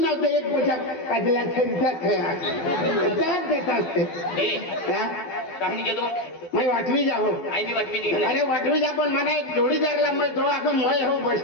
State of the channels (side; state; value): right; late; 12 ms